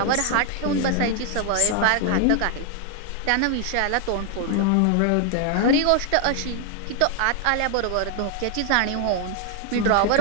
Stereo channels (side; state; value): both; different; correlation 0.00